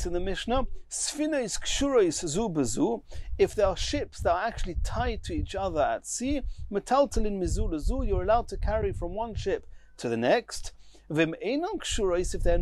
in the Mishnah, Sfina is kshurois zu bezu, if there are ships that are actually tied to each other at sea, metaltalin mizu lezu, you're allowed to carry from one ship to the next. Vim einan kshurois, if they're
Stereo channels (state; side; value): identical; both; correlation 1.00